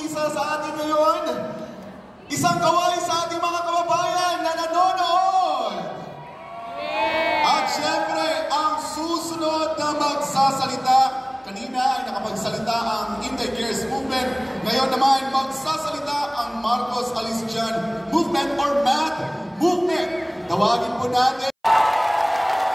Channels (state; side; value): identical; both; correlation 1.00